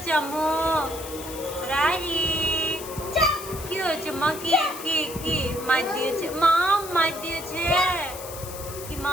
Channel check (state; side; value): noise; left; hiss, 12 dB below the sound